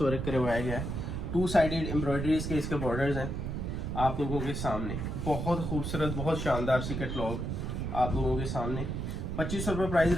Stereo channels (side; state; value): right; noise; rumble, 3 dB below the sound